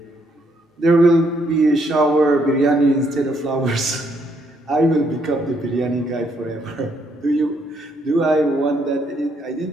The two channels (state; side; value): normal; both; correlation 0.72